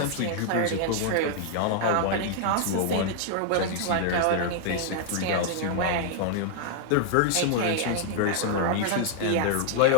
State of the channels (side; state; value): both; different; correlation 0.00